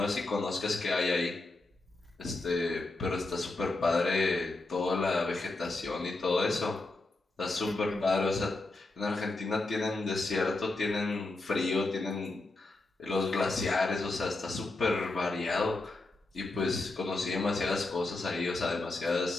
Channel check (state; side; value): quieter; right; 3.1 dB